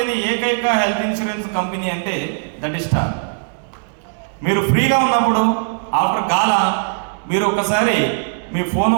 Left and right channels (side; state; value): left; silent; digital silence